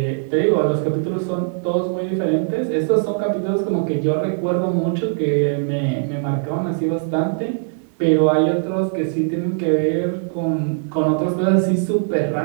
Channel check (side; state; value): left; silent; 65 dB below the other